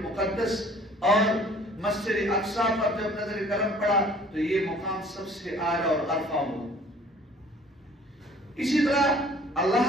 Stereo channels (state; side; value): normal; both; correlation 0.53